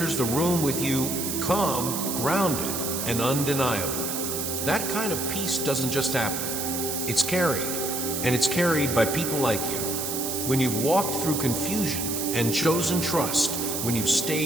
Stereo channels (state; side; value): noise; right; hiss, 3 dB below the sound